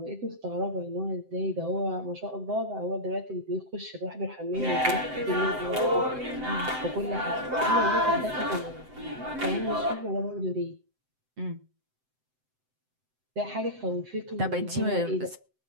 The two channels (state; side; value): late; left; 7.8 ms